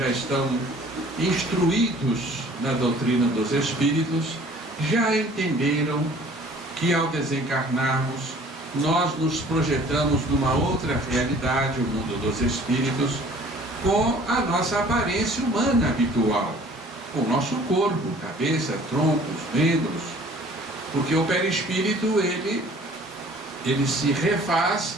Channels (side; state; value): both; normal; correlation 0.51